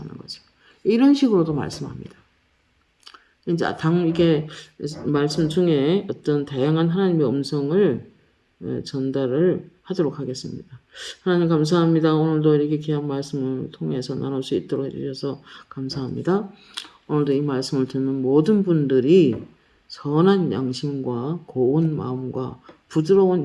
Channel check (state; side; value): identical; both; correlation 1.00